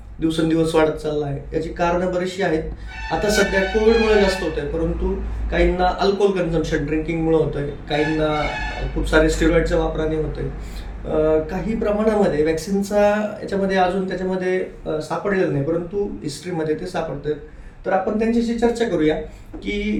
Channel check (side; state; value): both; identical; correlation 1.00